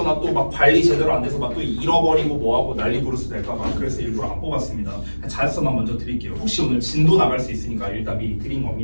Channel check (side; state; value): both; inverted; correlation -1.00